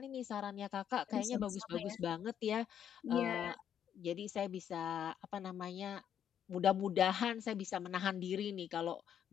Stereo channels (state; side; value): quieter; right; 9.2 dB